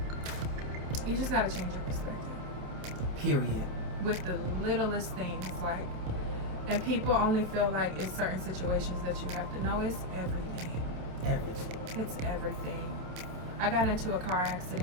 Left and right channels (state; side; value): late; left; 28 ms